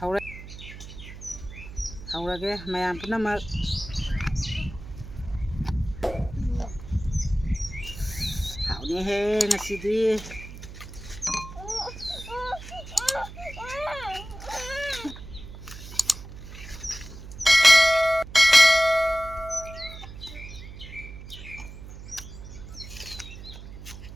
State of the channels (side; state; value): right; noise; hum, 13 dB below the sound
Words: ꯍꯧꯔꯒꯦ ꯃꯌꯥꯝ ꯄꯨꯝꯅꯃꯛ ꯍꯥꯎꯅꯤꯍꯦ ꯉꯁꯤꯗꯤ